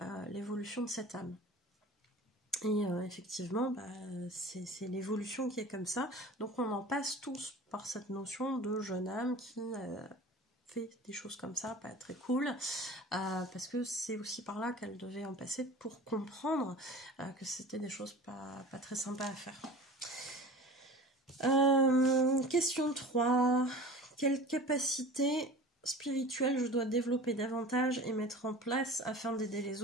l'évolution de cette âme. Et effectivement, c'est l'évolution qui est comme ça. Donc on en passe tous par cette notion de jeune âme qui fait des choses comme ça, pas très cool, parce que c'est aussi par là qu'elle devait en passer pour comprendre que c'était des choses pas très sympas à faire. Question 3. Quelle capacité spirituel je dois développer davantage et mettre en place afin d'aider les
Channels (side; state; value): both; normal; correlation 0.39